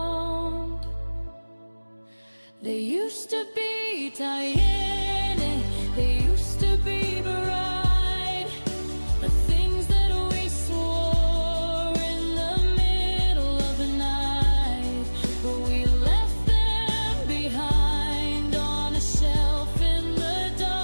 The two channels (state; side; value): inverted; both; correlation -1.00